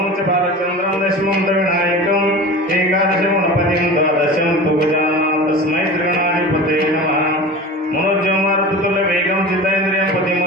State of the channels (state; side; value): normal; both; correlation 0.33